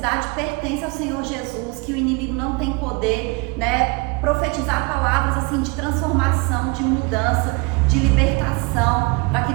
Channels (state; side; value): quieter; left; 28.1 dB